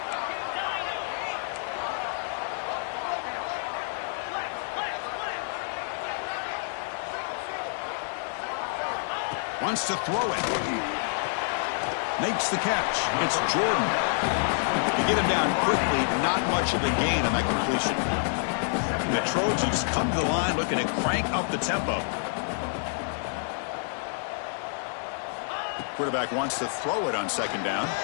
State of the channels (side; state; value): right; silent; digital silence